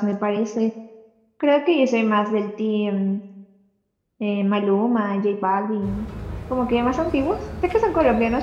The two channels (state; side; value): identical; both; correlation 1.00